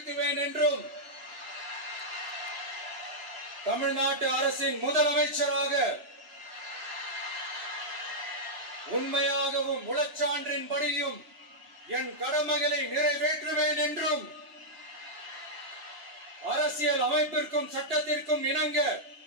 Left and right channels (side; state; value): left; late; 2.9 ms